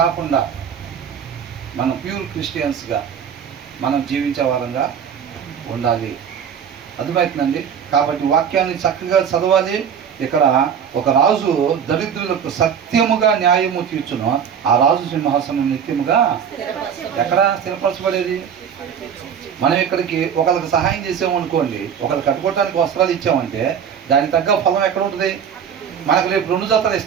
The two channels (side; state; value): left; quieter; 7.8 dB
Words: కాకుండా మనం ప్యూర్ క్రిస్టియన్స్గా మనం జీవించే వారంగా ఉండాలి. అర్థమవుతుందండి? కాబట్టి వాక్యాన్ని చక్కగా చదవాలి. ఇక్కడ ఒక రాజు దరిద్రులకు సత్యముగా న్యాయము తీర్చును, ఆ రాజు సింహాసనం నిత్యముగా ఎక్కడ స్థిరపరచబడేది? మనం ఇక్కడికి ఒకరికి సహాయం చేసామనుకోండి, ఒకరికి కట్టుకోవడానికి వస్త్రాలు ఇచ్చామంటే దానికి తగ్గ ఫలం ఎక్కడ ఉంటుంది? మనకు రేపు 2 జతలు